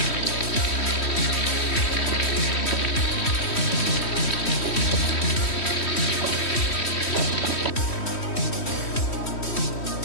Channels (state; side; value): late; right; 3.1 ms